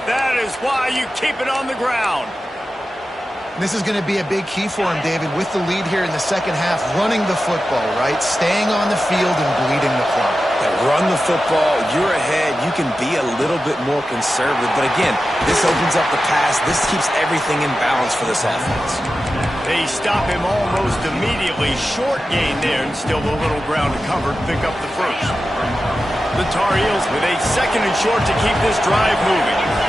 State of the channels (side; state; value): both; normal; correlation 0.93